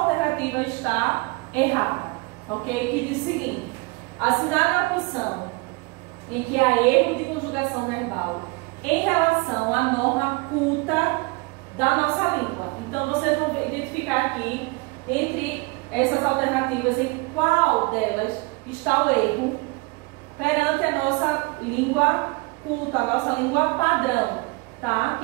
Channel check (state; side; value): quieter; left; 26.4 dB